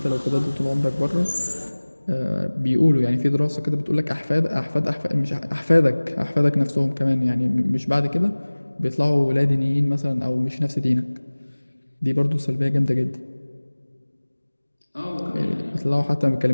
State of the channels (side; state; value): both; inverted; correlation -1.00